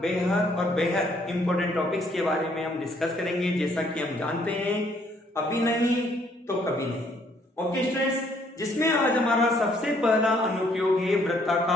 इंपॉर्टेंट टॉपिक्स के बारे में हम डिस्कस करेंगे। जैसा कि हम जानते हैं, अभी नहीं तो कभी नहीं। ओके स्टूडेंट्स, जिसमें आज हमारा सबसे पहला अनुप्रयोग है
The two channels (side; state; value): both; normal; correlation 0.66